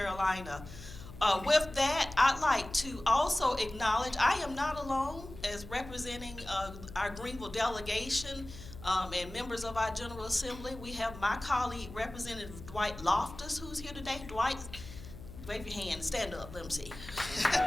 With that, I'd like to also acknowledge I am not alone as representing our Greenville delegation and members of our General Assembly. We have my colleague, Representative Dwight Loftus, who's here today. Dwight, wave your hand, stand up, let them see.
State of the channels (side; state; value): left; noise; hum, 14 dB below the sound